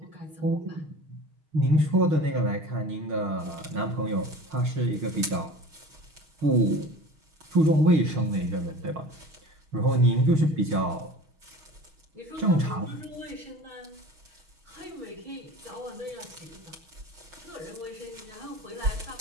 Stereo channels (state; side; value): late; left; 6.3 ms